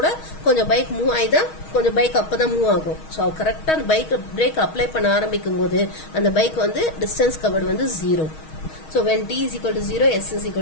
கொஞ்சம் பைக் மூவ் ஆகிதான், கொஞ்சம் பைக் அப்பதான் மூவ் ஆகும். ஸோ கரெக்டாக அந்த பைக் பிரேக் அப்ளை பண்ண ஆரம்பிக்கும் போது அந்த பைக் வந்து டிஸ்டன்ஸ் கவர்டு வந்து 0. So when t is equal to 0 s is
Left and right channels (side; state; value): right; late; 6.3 ms